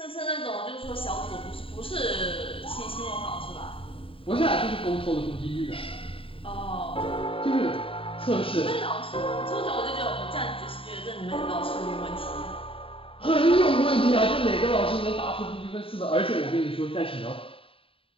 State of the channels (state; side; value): late; right; 0.26 ms